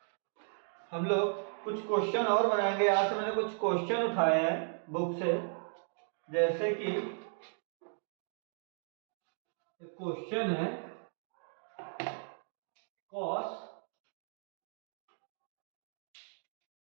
हम लोग कुछ क्वेश्चन और बनाएंगे। यहाँ से मैंने कुछ क्वेश्चन उठाए हैं बुक से, जैसे कि क्वेश्चन है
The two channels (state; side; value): silent; left; digital silence